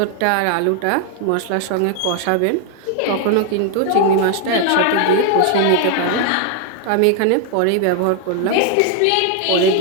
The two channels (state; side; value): different; both; correlation 0.00